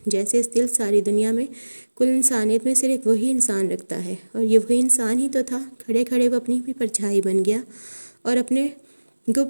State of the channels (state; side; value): inverted; both; correlation -1.00